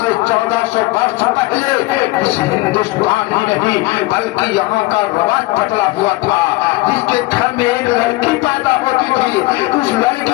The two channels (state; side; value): quieter; right; 20.5 dB